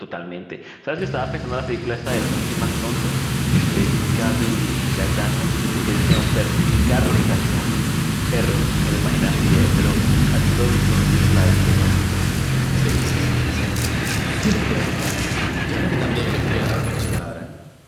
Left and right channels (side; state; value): both; identical; correlation 1.00